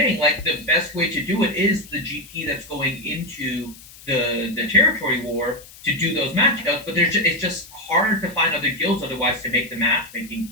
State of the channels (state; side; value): noise; left; hiss, 20 dB below the sound